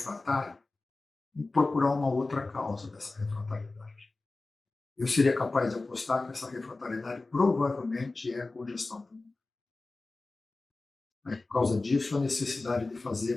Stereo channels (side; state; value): right; quieter; 3.4 dB